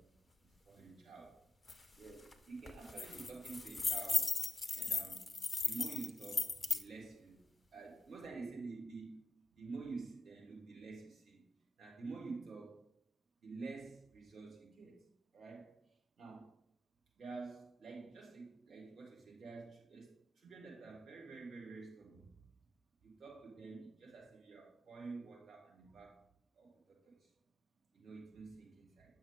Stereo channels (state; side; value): normal; both; correlation 0.86